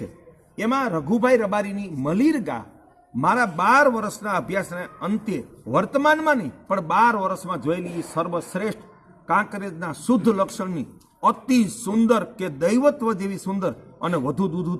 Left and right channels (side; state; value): both; identical; correlation 1.00